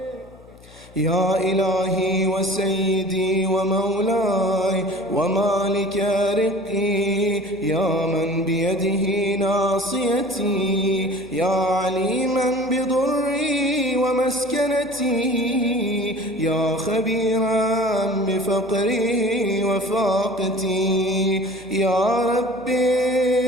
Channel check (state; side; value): noise; left; hum, 24 dB below the sound